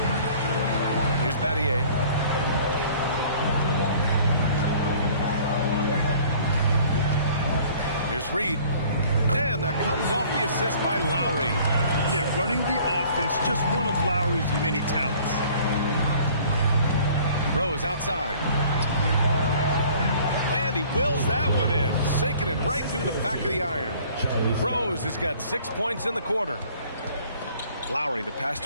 Here's Battier. Here's Reed. And that comes off the assist by Lowry. Yeah, running the offense, just one of Lowry's many talents. Rose outside. And he wills that one in, sinking it right through the back of the iron. Rose has got 6 points in the quarter. Lowry, the pass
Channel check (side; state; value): both; inverted; correlation -0.53